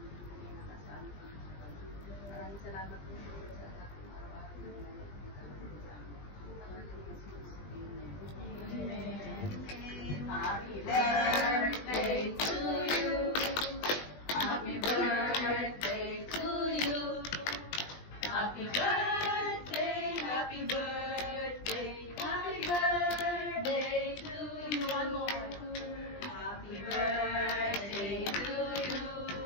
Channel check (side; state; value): right; late; 20 ms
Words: bibigay na kasama sa amin. Maraming salamat po sa Lord sa lahat ng araw-araw na nagtitipon sa amin. Pangalan ni Jesus. Amen. Happy birthday to you. Happy birthday to you. Happy birthday, happy birthday, happy birthday to you. One more. Happy birthday to you.